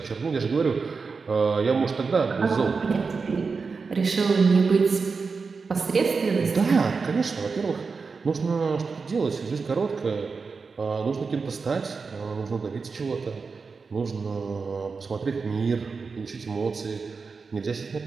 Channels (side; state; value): left; quieter; 4.8 dB